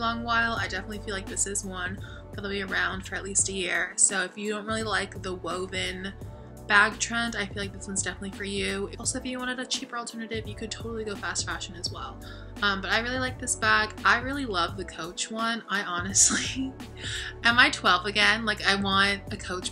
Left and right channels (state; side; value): identical; both; correlation 1.00